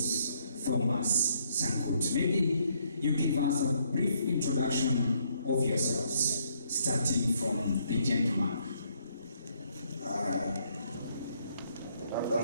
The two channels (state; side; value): inverted; both; correlation -0.71